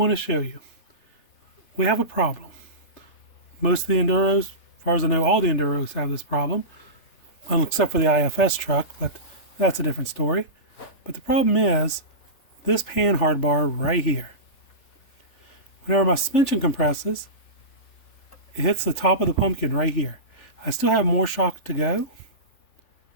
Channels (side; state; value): right; late; 3.4 ms